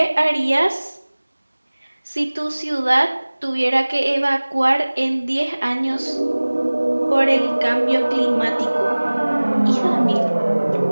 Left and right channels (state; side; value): inverted; both; correlation -1.00